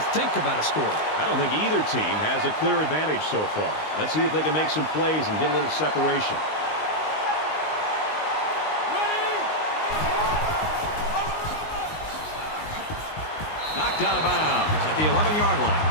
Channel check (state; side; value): late; right; 19 ms